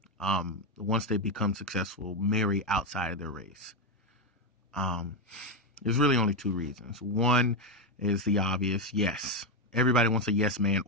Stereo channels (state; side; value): normal; both; correlation 0.07